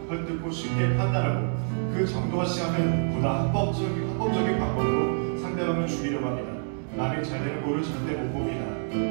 헐뜯고 쉽게 판단하고 그 정도가 심하면 보다 합법적인 방법으로 상대방을 죽이려고 합니다. 남이 잘 되는 꼴을 절대 못 봅니다.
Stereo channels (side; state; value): left; silent; 60 dB below the other